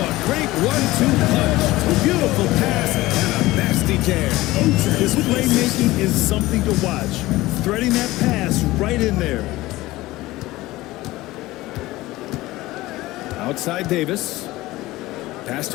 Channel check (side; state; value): right; quieter; 18.4 dB